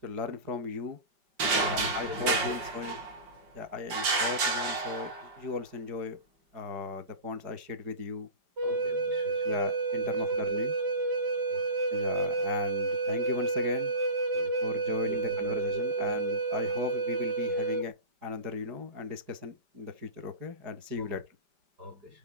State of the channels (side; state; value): left; late; 5.0 ms